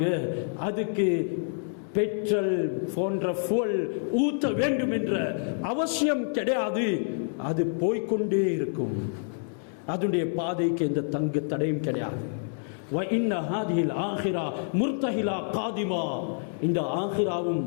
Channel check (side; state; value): right; silent; 60 dB below the other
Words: அதுக்கு பெட்ரோல் போன்ற fuel ஊத்த வேண்டும் என்ற அவசியம் கிடையாது. அது போய்கொண்டே இருக்கும், அதனுடைய பாதைக்கு எந்த தங்கு தடையும் கிடையாது. இந்த ஆகிராவும்